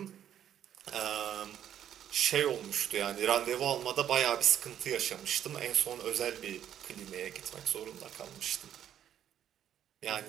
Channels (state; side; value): quieter; left; 10.2 dB